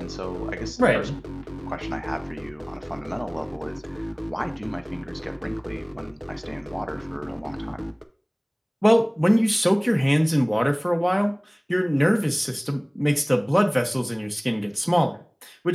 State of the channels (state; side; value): identical; both; correlation 1.00